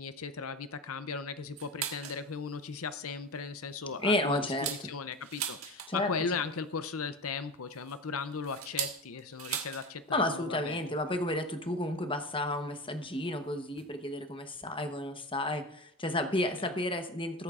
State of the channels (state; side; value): normal; both; correlation 0.28